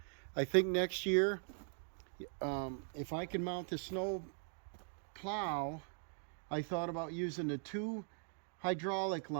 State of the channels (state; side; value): silent; left; 51 dB below the other